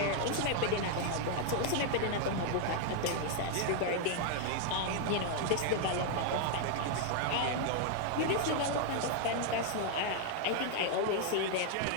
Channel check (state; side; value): different; both; correlation 0.00